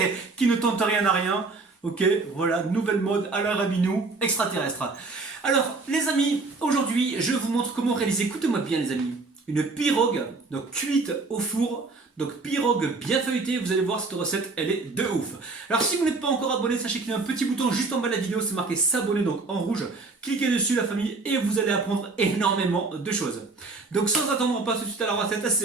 qui ne tente rien à rien. Ok, voilà, nouvelle mode à la Rabinou extraterrestre. Alors, les amis, aujourd'hui, je vous montre comment réaliser, écoutez-moi bien les amis, une pirogue, donc cuite au four. Donc pirogue bien feuilletée, vous allez voir cette recette, elle est de ouf. Alors si vous n'êtes pas encore abonné, sachez qu'il y a un petit bouton juste en bas de la vidéo, c'est marqué s'abonner, donc en rouge. Cliquez dessus la famille et vous allez apprendre énormément de choses. Donc sans attendre, on passe tout de suite à la recette,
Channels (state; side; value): quieter; left; 3.7 dB